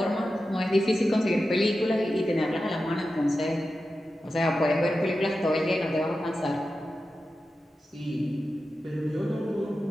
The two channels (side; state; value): both; normal; correlation 0.92